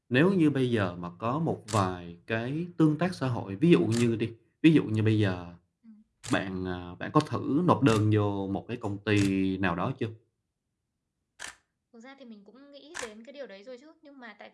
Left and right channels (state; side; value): identical; both; correlation 1.00